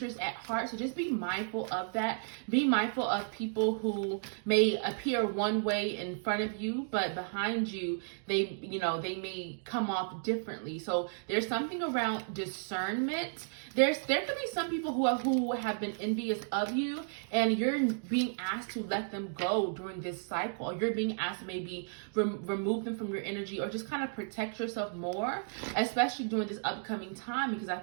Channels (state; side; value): silent; left; digital silence